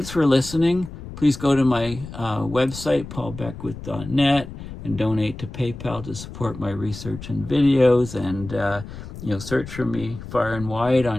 for listening. Please go to my website, paulbeckwith.net, and donate to PayPal to support my research and videos. And, search for me far and wide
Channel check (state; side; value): noise; left; rumble, 12 dB below the sound